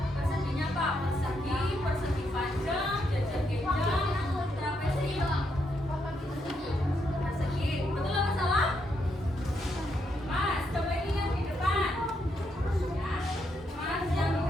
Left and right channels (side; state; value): both; normal; correlation 0.79